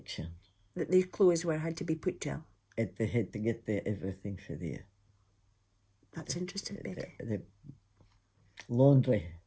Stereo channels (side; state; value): both; identical; correlation 1.00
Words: That their clothes had to be put to? They had to get everything for there. That's interesting, Betty. The laundry.